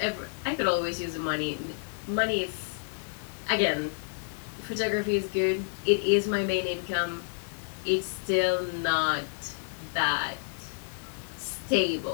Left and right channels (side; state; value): right; silent; digital silence